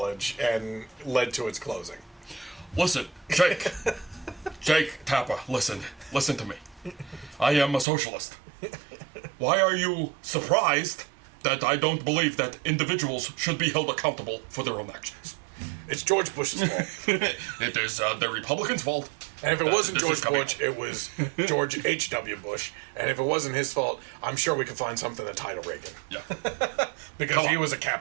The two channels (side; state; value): left; drops out; at 7.9 s